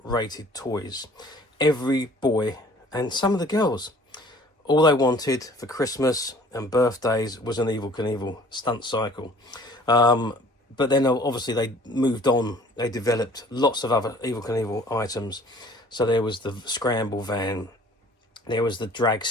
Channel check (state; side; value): normal; both; correlation 0.52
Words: rated toys. Every boy and some of the girls, all they wanted for Christmas and birthdays was an Evel Knievel Stunt Cycle. But then obviously they moved on. They developed lots of other Evel Knievel items. So there was the scramble van, there was the